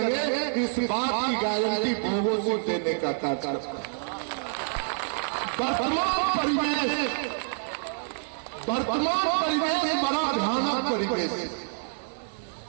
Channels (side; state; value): left; silent; 60 dB below the other